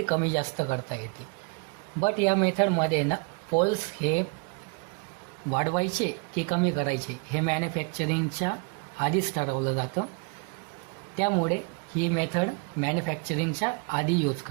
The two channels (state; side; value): quieter; left; 32.8 dB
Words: कमी जास्त करता येते. बट या मेथडमध्ये ना पोल्स हे वाढवायचे की कमी करायचे हे मॅन्युफॅक्चरिंगच्या आधीच ठरवलं जातं. त्यामुळे ही मेथड मॅन्युफॅक्चरिंगच्या आधी यूज